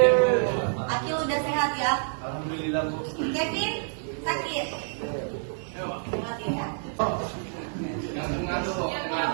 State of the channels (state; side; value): silent; left; 60 dB below the other